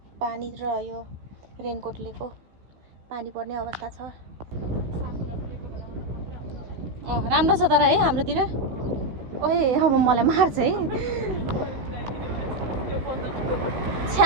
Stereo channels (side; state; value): left; late; 16 ms